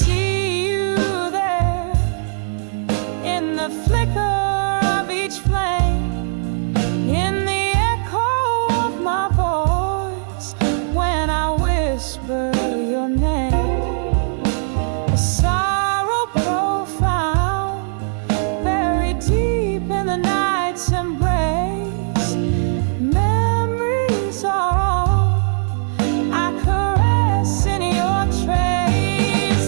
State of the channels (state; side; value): silent; left; 65 dB below the other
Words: you there in the flicker of each flame, in the echo of my voice when I whisper your name. A sorrow profound, buried deep in the night's embrace. Memories are all I caress in your